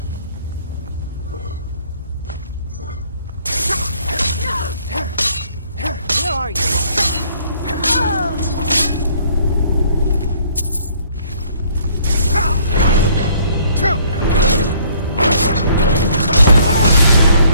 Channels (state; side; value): inverted; both; correlation -0.61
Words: Where are you?